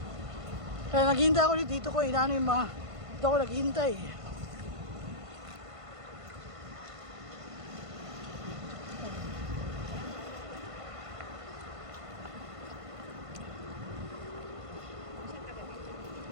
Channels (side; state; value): left; late; 1.5 ms